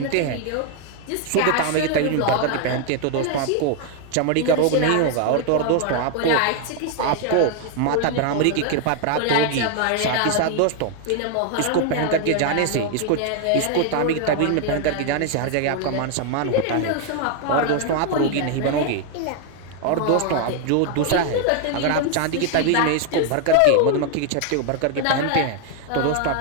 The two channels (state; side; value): different; both; correlation 0.00